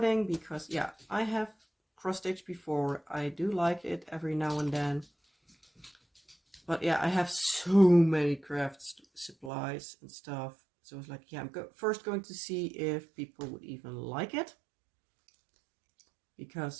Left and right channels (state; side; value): drops out; left; at 9.5 s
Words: because, yeah, I have cross-stitched before. I do like it every now and then. But yeah, I have so many craft supplies and stuff. So I was like, yeah, I'm first going to see if people would even like it.